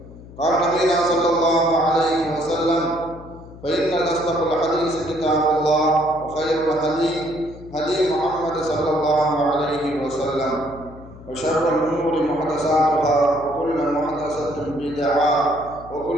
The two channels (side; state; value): left; noise; hum, 18 dB below the sound